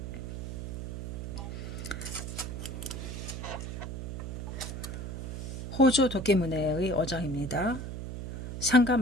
호조 도끼문해의 어장입니다. 상가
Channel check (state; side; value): noise; right; hum, 6 dB below the sound